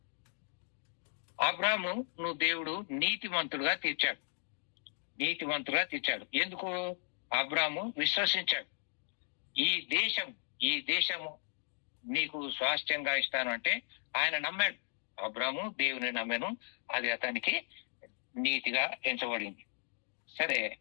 అబ్రాహాము నువ్వు దేవుడు నీతిమంతుడుగా తీర్చాడు. ఎందుకు? అబ్రాహాము విశ్వసించాడు. ఈ దేశము నీకు స్వాస్థ్యంగా ఇస్తాను అంటే ఆయన నమ్మాడు. అబ్రాహాము దేవుని నమ్మాను, అది అతనికి నీతిగా ఎంచబడింది. సరే,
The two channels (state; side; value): silent; right; digital silence